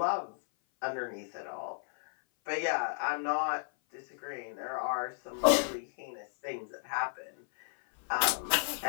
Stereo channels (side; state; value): right; silent; 56 dB below the other